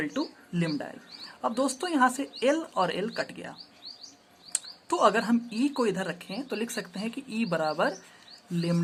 to lambda L. अब दोस्तों यहाँ से L और L कट गया, तो अगर हम E को इधर रखें तो लिख सकते हैं कि E बराबर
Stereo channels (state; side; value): identical; both; correlation 1.00